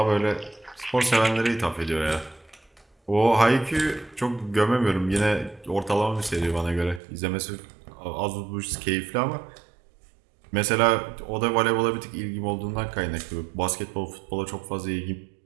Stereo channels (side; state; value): left; drops out; at 7.0 s